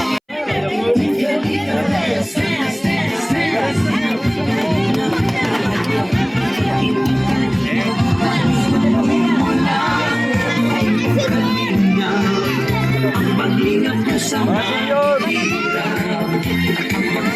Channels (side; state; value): both; identical; correlation 1.00